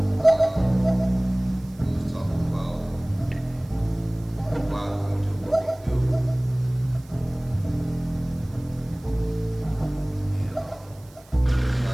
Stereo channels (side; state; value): right; noise; hiss, 27 dB below the sound